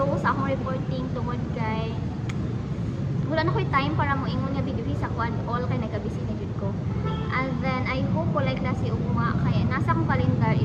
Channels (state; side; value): identical; both; correlation 1.00